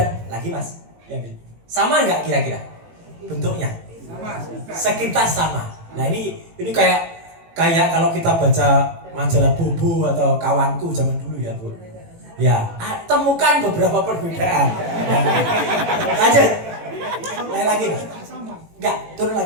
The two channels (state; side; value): late; left; 18 ms